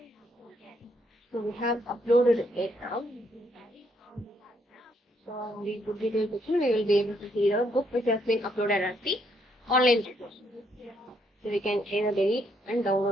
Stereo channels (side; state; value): both; normal; correlation 0.72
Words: So we have uploaded it now. So on the book details section, we will be able to see the book which has been uploaded as the online resource. So we can either delete and